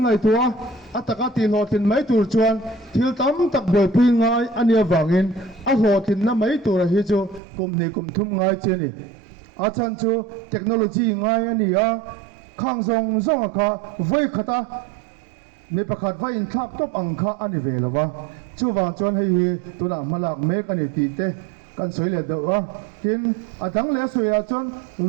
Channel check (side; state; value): left; drops out; at 7.4 s